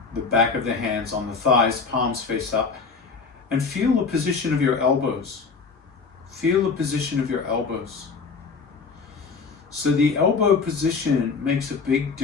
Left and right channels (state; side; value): quieter; right; 4.9 dB